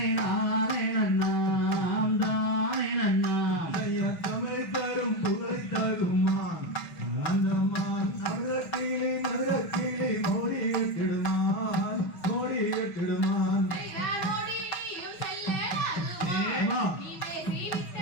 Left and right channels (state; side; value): late; right; 5.8 ms